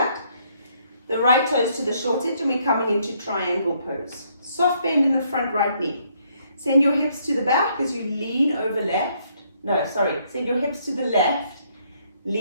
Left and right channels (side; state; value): both; inverted; correlation -0.70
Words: The right toes to the short edge, and we're coming into triangle pose. Soft bend in the front right knee. Send your hips to the back as you lean over left. No, sorry. Send your hips to the left.